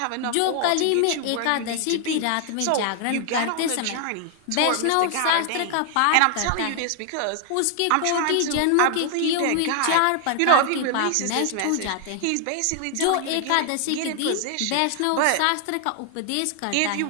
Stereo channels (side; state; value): both; different; correlation 0.00